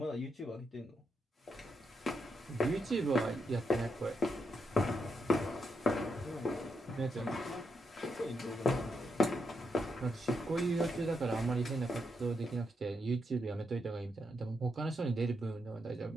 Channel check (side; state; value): both; normal; correlation 0.81